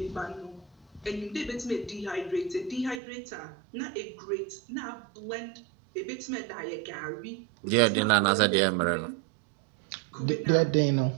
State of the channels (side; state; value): left; drops out; at 3.0 s